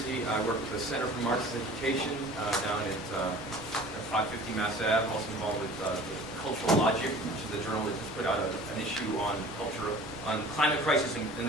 I work with the Center for Marxist Education down at 550 Mass Ave. I'm also involved with Cultural Logic, which is a journal that just put out an issue on culture, on climate crisis and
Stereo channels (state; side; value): normal; both; correlation 0.45